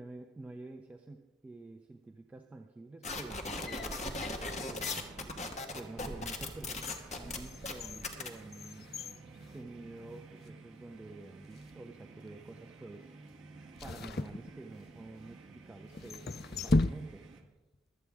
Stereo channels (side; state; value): both; normal; correlation 0.73